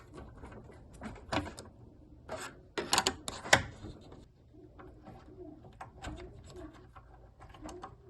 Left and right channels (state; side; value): identical; both; correlation 1.00